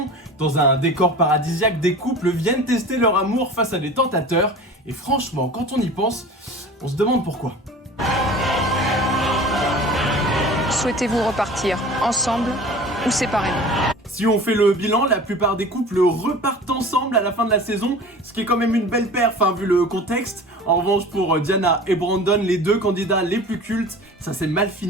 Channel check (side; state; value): both; normal; correlation 0.39